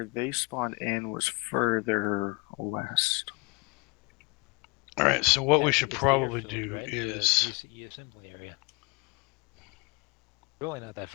they spawned in was further west. Alright, so what we should probably do is... UCE assembly area. Really not that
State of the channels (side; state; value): right; quieter; 29.4 dB